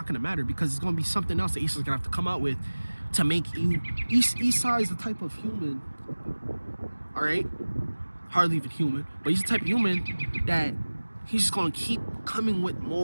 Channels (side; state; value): both; inverted; correlation -1.00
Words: gonna matter because it's gonna be something else that Esau's gonna have to come out with to make you. Esau is the type of human, all right, hardly even human, but he's the type of human that he's just gonna keep coming with